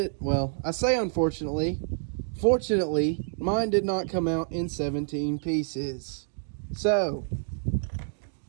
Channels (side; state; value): left; silent; digital silence